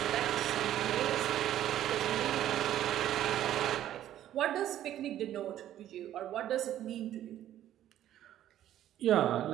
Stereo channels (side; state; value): left; quieter; 12.1 dB